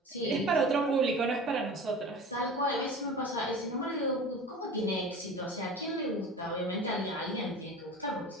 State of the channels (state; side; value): normal; both; correlation 0.36